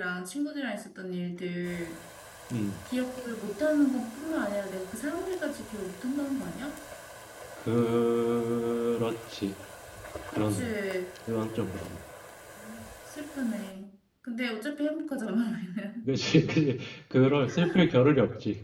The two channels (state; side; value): identical; both; correlation 1.00